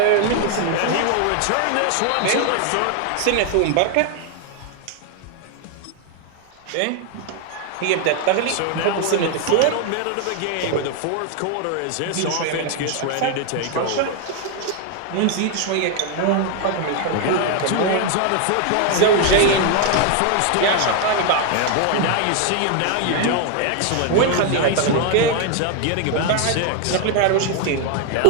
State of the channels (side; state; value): both; different; correlation 0.00